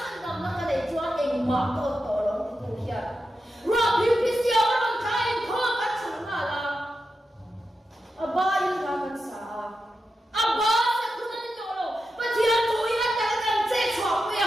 dam na ka dei chuan eng ma to lo tu hian ra pi pi sia ron kai ko ka chang na la aba in ka kan sa aba se kun ni to lo pa thia tu ya ta kan che chwa pu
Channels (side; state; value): both; normal; correlation 0.89